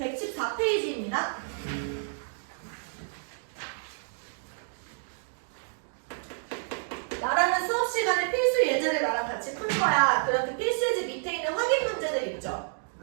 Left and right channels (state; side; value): silent; left; digital silence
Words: 나라는 수업 시간에 필수 예제를 나랑 같이 풀 거야. 그럼 그 필수 예제 밑에 있는 확인 문제들 있죠?